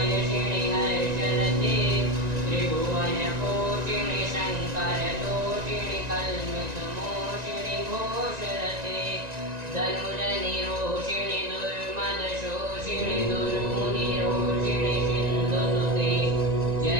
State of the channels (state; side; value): late; left; 1.9 ms